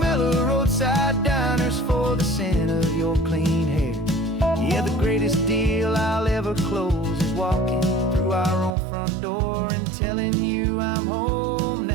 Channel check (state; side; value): drops out; left; at 8.8 s